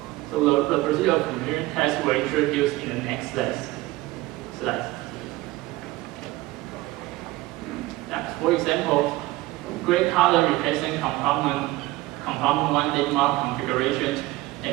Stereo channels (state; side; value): quieter; left; 19.0 dB